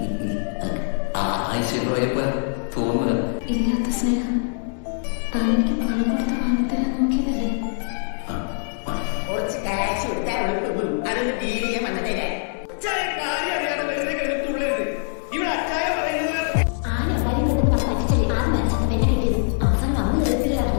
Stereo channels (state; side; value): silent; right; digital silence